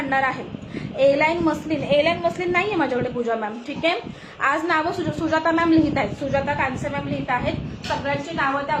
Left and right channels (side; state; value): both; identical; correlation 1.00